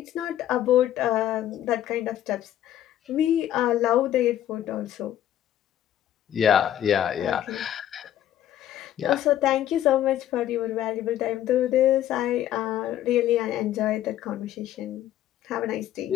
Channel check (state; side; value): quieter; right; 11.8 dB